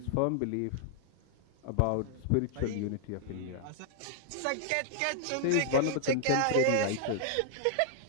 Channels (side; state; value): both; different; correlation -0.01